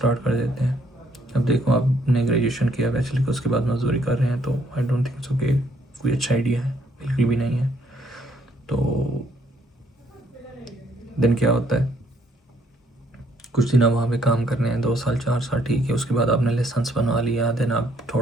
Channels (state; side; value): normal; both; correlation 0.68